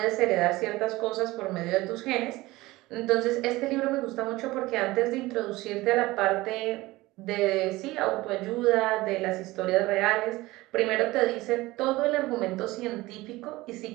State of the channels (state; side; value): quieter; left; 19.5 dB